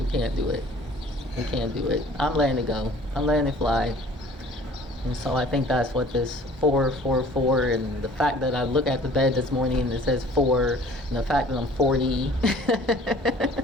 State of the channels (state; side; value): normal; both; correlation 0.50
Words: can't do it. We can't do it. I'm letting it go. I'm letting it fly. And so I think that's what this 444, and the fact that I look at the bed this morning and it says 4, and the fact that I'm 40.